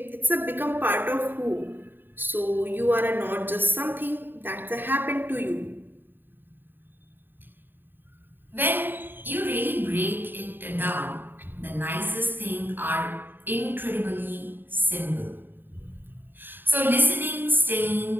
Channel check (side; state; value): left; late; 0.094 ms